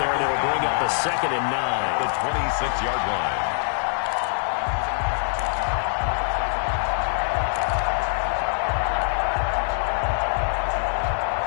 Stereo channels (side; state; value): right; silent; 63 dB below the other